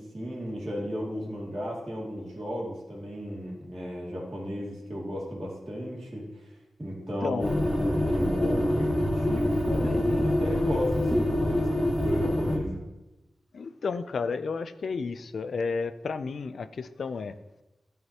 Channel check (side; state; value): both; normal; correlation 0.94